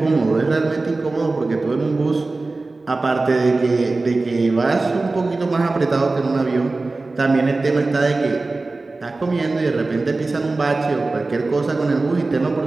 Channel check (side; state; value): left; quieter; 3.4 dB